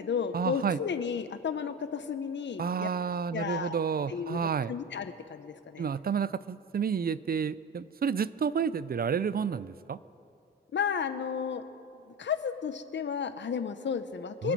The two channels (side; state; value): both; normal; correlation 0.24